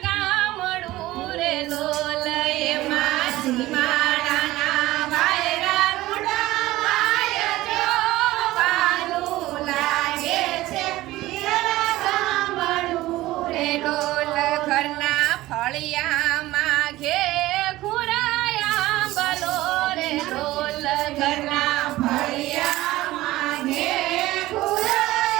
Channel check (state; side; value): quieter; left; 17.2 dB